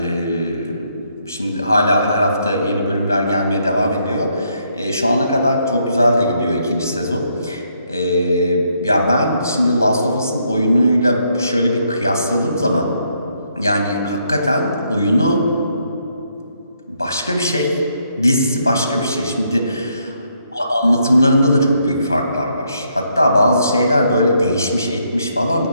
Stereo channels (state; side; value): inverted; both; correlation -0.74